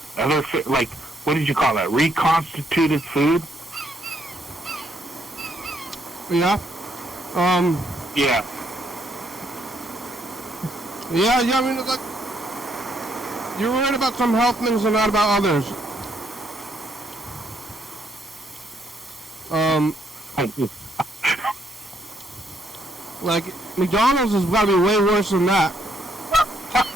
like what did you call that? Reconstituted food. Yeah. Yeah. Yeah. I mean, it's like you're worried about some health things and not about others. Like McDonald's has got to be way worse than that.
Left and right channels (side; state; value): both; normal; correlation 0.72